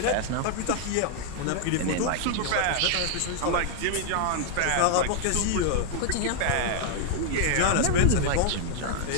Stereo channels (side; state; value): both; different; correlation 0.00